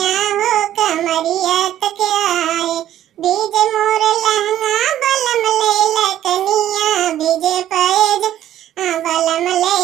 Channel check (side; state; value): left; quieter; 12.2 dB